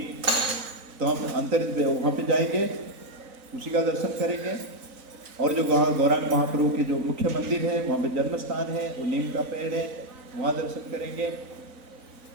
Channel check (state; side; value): late; left; 4.0 ms